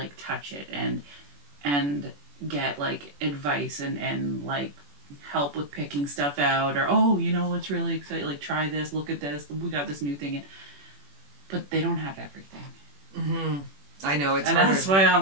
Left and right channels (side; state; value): left; late; 21 ms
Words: touch it and get, like, advice and like, help with picking stuff out, or, oh, you know what's really exciting, like, try this, look at this, we got this new thing in. But they don't have everything. Mm-hmm. I know, it's and harder. That's why